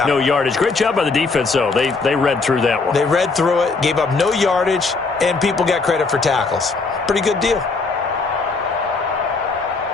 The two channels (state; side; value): quieter; right; 4.1 dB